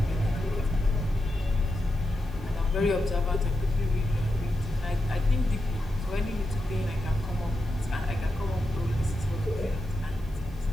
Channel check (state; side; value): noise; right; hiss, 28 dB below the sound